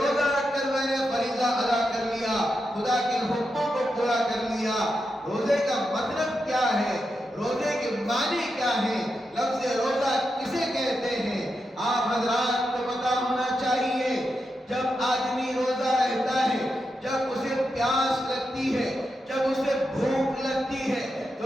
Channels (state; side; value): normal; both; correlation 0.86